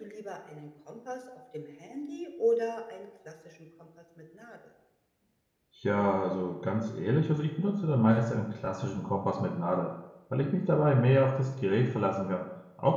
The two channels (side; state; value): both; identical; correlation 1.00